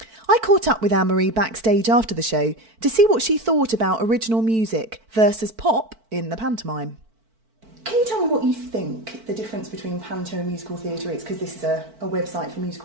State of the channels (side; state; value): left; late; 4.5 ms